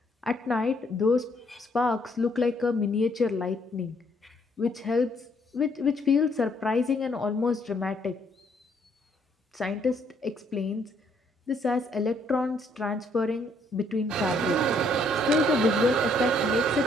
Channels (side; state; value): both; normal; correlation 0.68